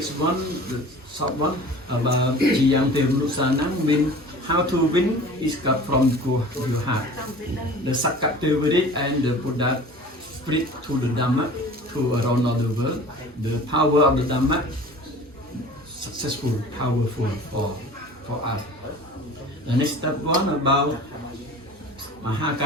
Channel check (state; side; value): normal; both; correlation 0.42